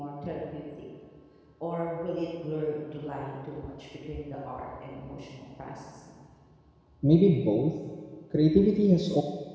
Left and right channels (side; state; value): both; identical; correlation 1.00